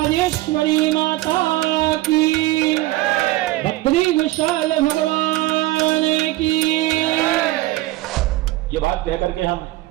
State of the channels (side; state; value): left; quieter; 17.5 dB